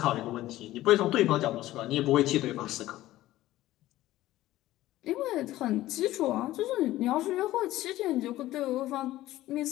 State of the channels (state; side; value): quieter; right; 15.6 dB